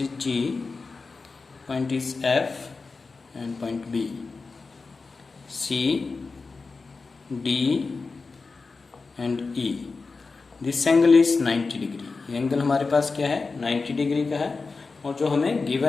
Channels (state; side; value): quieter; right; 4.2 dB